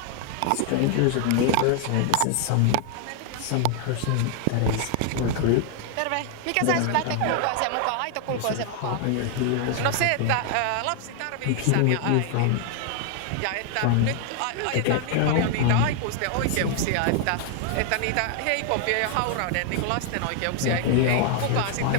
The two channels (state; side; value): different; both; correlation 0.00